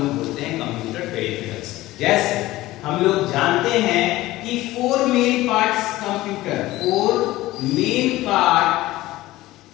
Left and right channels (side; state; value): right; quieter; 17.2 dB